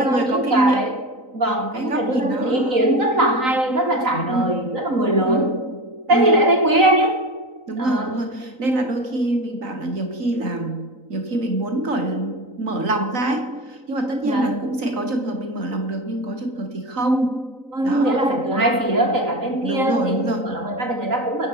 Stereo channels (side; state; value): left; late; 3.9 ms